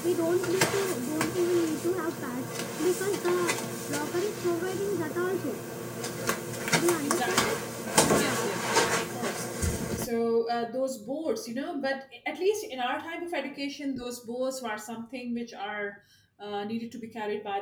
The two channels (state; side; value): identical; both; correlation 1.00